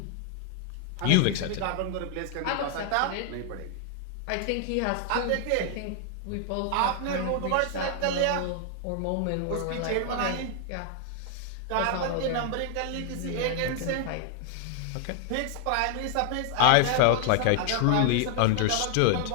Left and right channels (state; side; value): different; both; correlation 0.00